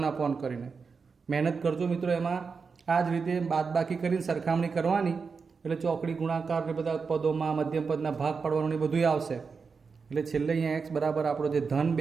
અપોન કરીને મહેનત કરજો મિત્રો. એમાં આ જ રીતે બાદબાકી કરીને સરખામણી કરવાની એટલે ચોકડી ગુણાકાર ને બધા પદોમાં મધ્યમ પદના ભાગ પાડવાનું એ બધું આવશે. એટલે છેલ્લે અહીંયા એક્સ બરાબર આપણો જે ધન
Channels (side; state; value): left; quieter; 5.2 dB